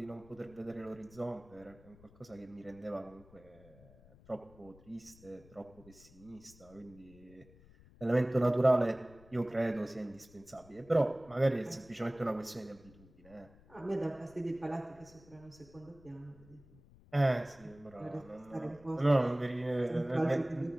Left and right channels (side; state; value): left; noise; rumble, 24 dB below the sound